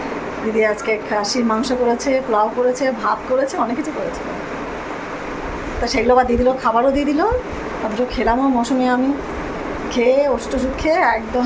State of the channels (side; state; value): both; identical; correlation 1.00